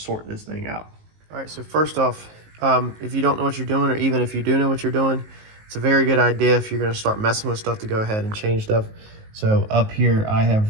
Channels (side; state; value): left; late; 19 ms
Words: this thing out. All right, so first off, if you don't know what you're doing, or even if you do know what you're doing, it's a very good idea if you're gonna start messing with stuff to go ahead and change stuff. So up here, I have